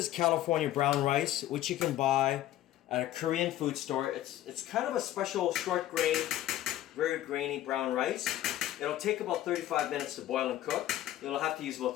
California brown rice, which you can buy at a Korean food store. It's kind of a special short grain, very grainy brown rice. It'll take about 35 minutes to boil and cook. You'll have to use about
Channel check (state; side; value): quieter; right; 13.4 dB